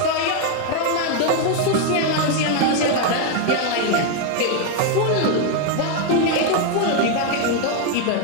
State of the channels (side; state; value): both; different; correlation 0.01